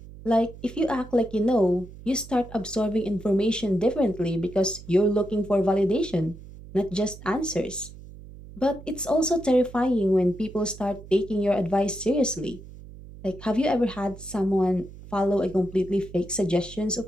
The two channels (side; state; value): right; noise; hum, 17 dB below the sound